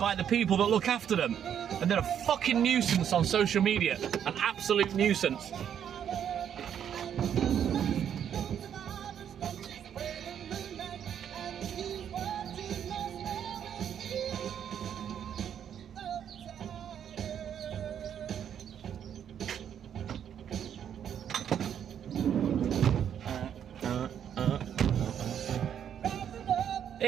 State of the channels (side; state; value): left; quieter; 9.0 dB